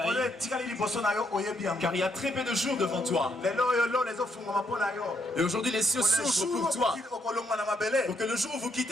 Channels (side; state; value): both; normal; correlation 0.74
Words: car il y a très peu de jours devant toi. Et aujourd'hui, les cieux s'ouvrent pour toi. Pour que le jour où vous